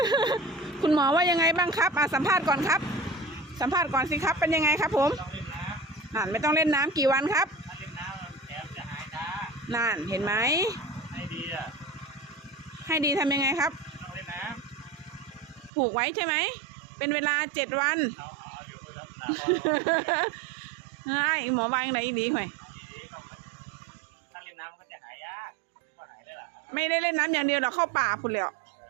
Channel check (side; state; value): left; drops out; at 15.7 s